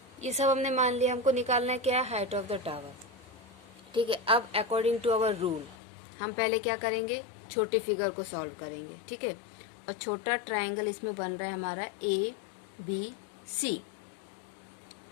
ये सब हमने मान लिया। हमको निकालना है क्या, हाइट ऑफ द टावर। ठीक है, अब अकॉर्डिंग टू आवर रूल हम पहले क्या करेंगे, छोटी फिगर को सॉल्व करेंगे। ठीक है, और छोटा ट्राइंगल इसमें बन रहा है हमारा ABC।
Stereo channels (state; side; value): drops out; right; at 5.8 s